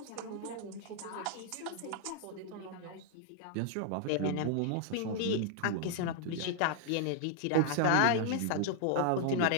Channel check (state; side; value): different; both; correlation 0.00